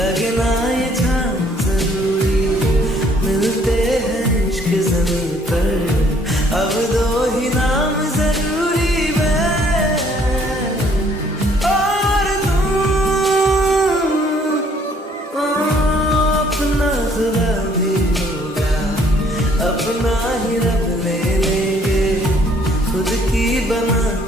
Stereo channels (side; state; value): both; normal; correlation 0.62